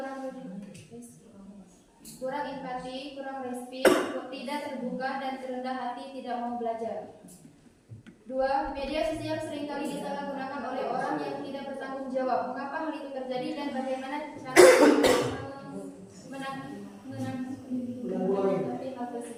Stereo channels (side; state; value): both; identical; correlation 1.00